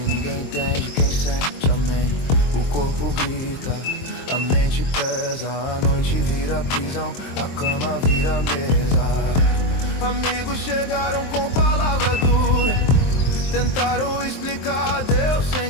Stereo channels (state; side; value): late; right; 23 ms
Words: ninguém entende. Quem sente, amém. O corpo grita, a mente pesa. A noite vira prisão, a cama vira mesa. Amigos chegaram com palavra dura, tentaram explicar Deus